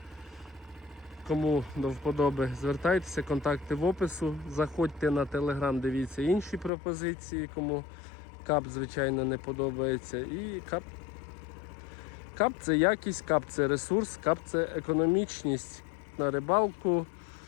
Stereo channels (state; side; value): drops out; right; at 6.7 s